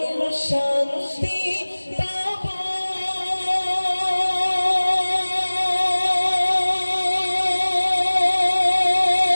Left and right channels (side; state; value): both; inverted; correlation -1.00